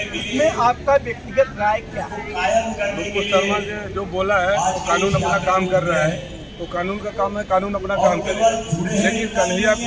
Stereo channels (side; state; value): both; identical; correlation 1.00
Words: इसमें आपका व्यक्तिगत राय क्या है? नुपुर शर्मा ने जो बोला है वो कानून अपना काम कर रहा है, तो कानून का काम है, कानून अपना काम करेगा। लेकिन कन्हैया